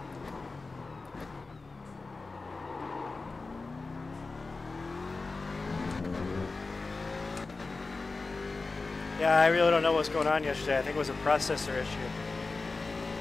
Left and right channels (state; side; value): quieter; right; 3.8 dB